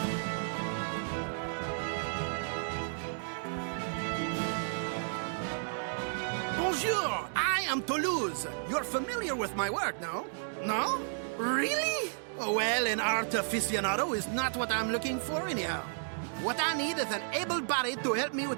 Bonjour, I am Toulouse. You're familiar with my work, no? No? Really? Oh, well, an art aficionado is not what I'm looking for anyhow. What I need is an able body to help me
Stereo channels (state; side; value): silent; left; digital silence